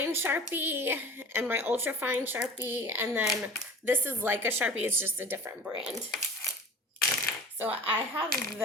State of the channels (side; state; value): both; normal; correlation 0.40